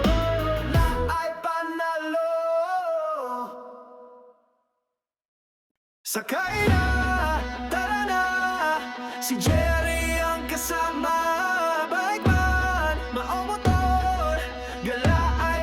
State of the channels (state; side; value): identical; both; correlation 1.00